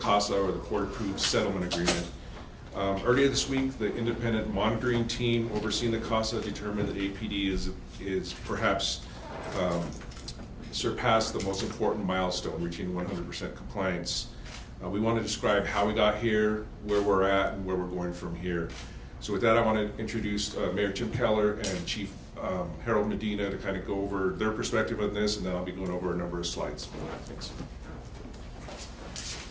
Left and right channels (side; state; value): both; identical; correlation 1.00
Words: or the Court-Approved Settlement Agreement. Earlier this week, the independent monitoring team overseeing the CASA determined that APD is perhaps surpassed the most important milestone, reaching 100% compliance. We want to describe how we got here, where we're at, and where we're going from here. So with that, I want to introduce Mayor Tim Keller and Chief Harold Medina to kind of go over their perspective on this, and then I'll be going over a number of slides. Thanks.